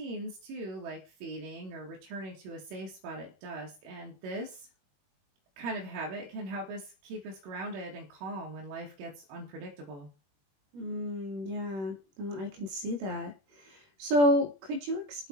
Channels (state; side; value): late; left; 21 ms